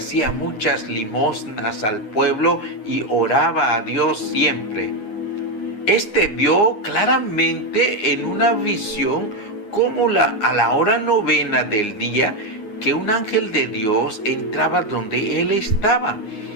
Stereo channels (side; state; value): right; late; 9.7 ms